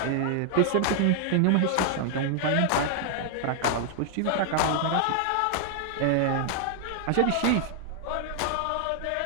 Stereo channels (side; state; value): both; different; correlation 0.00